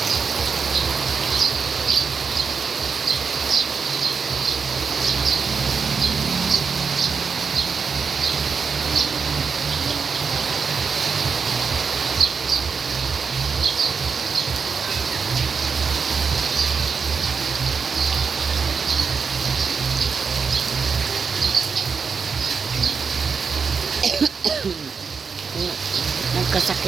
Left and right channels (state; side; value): quieter; left; 5.6 dB